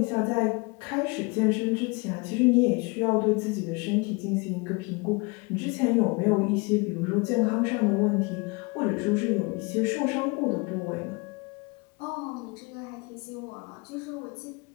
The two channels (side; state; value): right; quieter; 28.5 dB